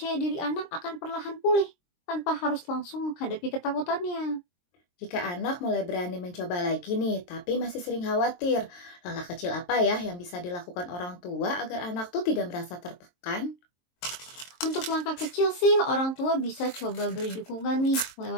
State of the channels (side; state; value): right; late; 23 ms